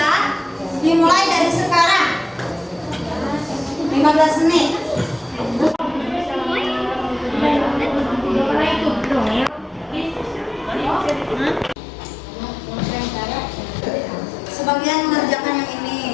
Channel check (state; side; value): drops out; right; at 11.8 s